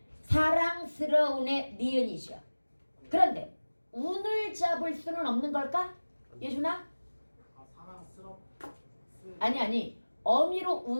사랑스러운의 니은이죠. 그런데 운을 잡을 수는 없는 걸까? 예준아? 아니 어미로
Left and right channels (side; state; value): both; inverted; correlation -1.00